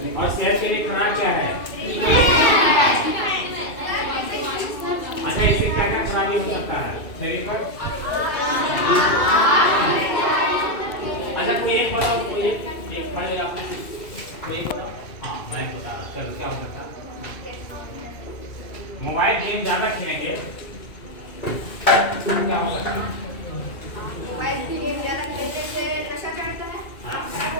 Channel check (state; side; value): late; right; 2.3 ms